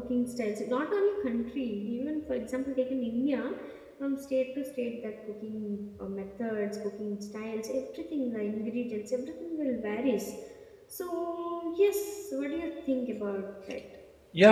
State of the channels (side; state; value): both; identical; correlation 1.00